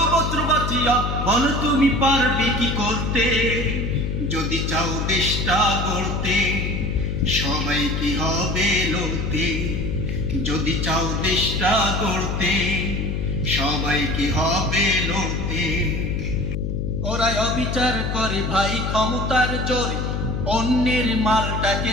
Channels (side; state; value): left; noise; hum, 1 dB below the sound